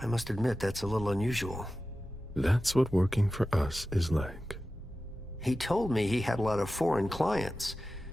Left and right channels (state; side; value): normal; both; correlation 0.94